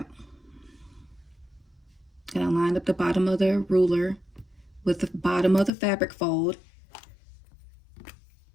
And I lined up the bottom of the ruler with the bottom of the fabric fold,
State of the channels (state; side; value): drops out; right; at 5.7 s